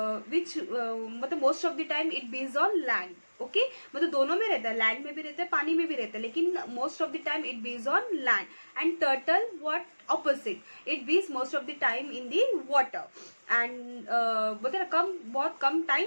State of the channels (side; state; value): both; inverted; correlation -1.00